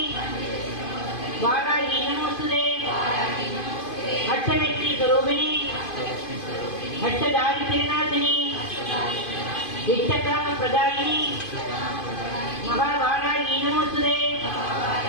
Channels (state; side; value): late; right; 2.5 ms